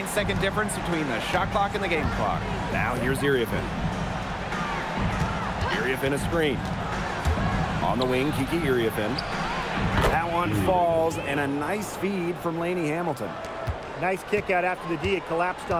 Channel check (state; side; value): identical; both; correlation 1.00